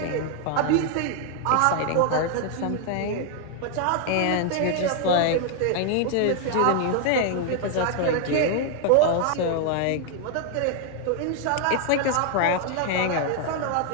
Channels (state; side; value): different; both; correlation 0.00